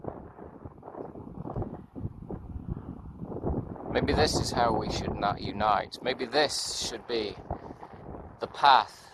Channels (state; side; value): identical; both; correlation 1.00